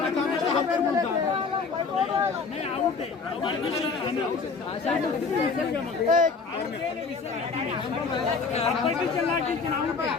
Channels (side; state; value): right; quieter; 4.8 dB